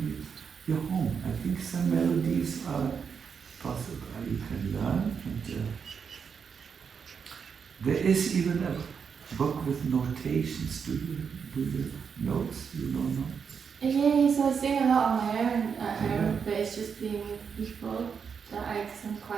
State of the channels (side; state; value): left; quieter; 6.4 dB